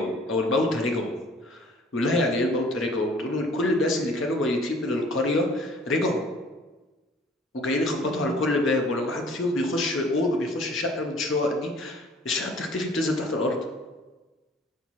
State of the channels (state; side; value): normal; both; correlation 0.53